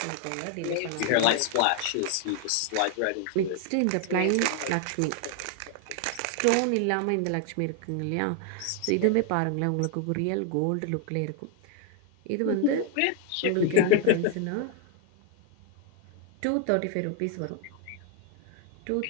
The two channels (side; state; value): both; different; correlation 0.00